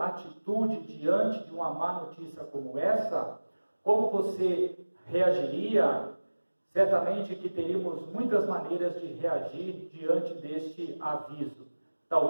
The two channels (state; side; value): inverted; both; correlation -1.00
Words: atitude diante de uma má notícia como essa? Como você reagiria? Certamente que teríamos muitas maneiras de reagir diante deste aviso.